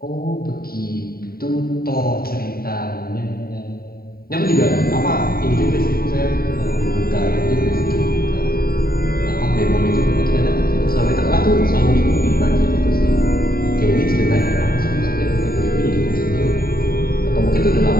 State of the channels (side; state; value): right; late; 0.43 ms